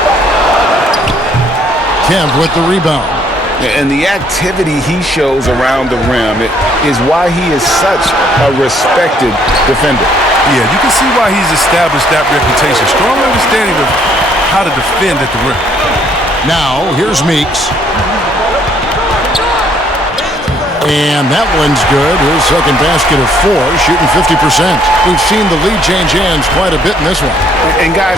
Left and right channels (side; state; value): both; normal; correlation 0.65